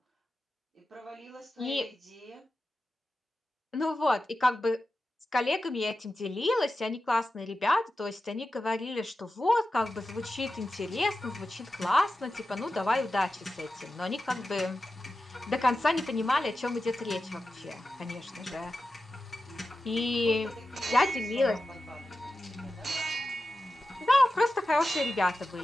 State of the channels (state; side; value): normal; both; correlation 0.93